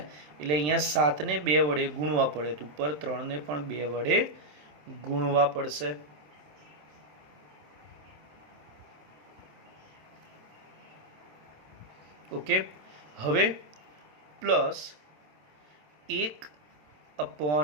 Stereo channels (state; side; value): late; left; 27 ms